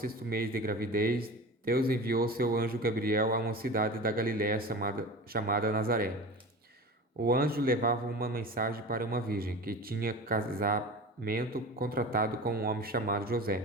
mês de gravidez, Deus enviou seu anjo Gabriel a uma cidade da Galiléia chamada Nazaré. O anjo levava uma mensagem para uma virgem que tinha casamento contratado com um homem chamado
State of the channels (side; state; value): both; normal; correlation 0.33